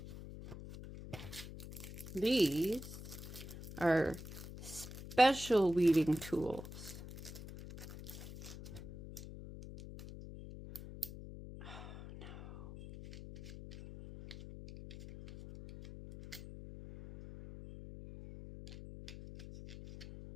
These are special weeding tools.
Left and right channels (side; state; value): left; noise; hum, 12 dB below the sound